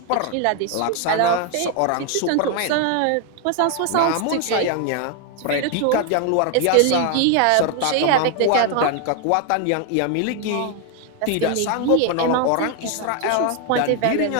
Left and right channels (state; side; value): different; both; correlation 0.01